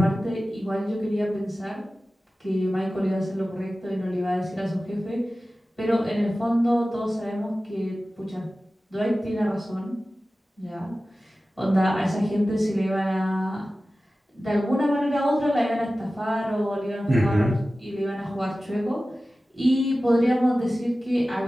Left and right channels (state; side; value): normal; both; correlation 0.96